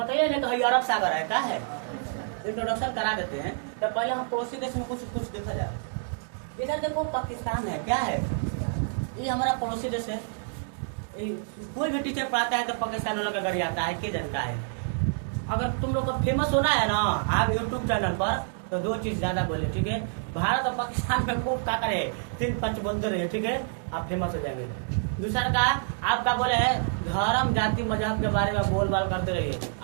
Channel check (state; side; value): silent; left; digital silence